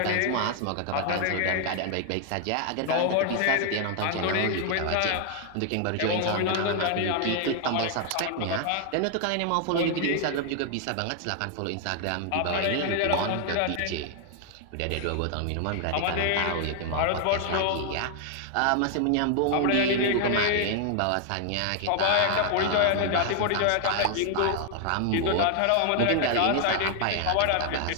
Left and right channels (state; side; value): different; both; correlation 0.00